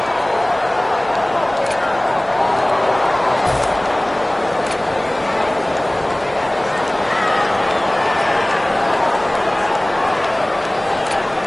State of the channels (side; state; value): right; noise; rumble, 24 dB below the sound